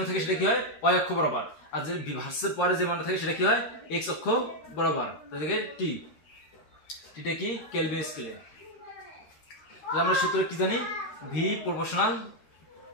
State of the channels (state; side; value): late; right; 13 ms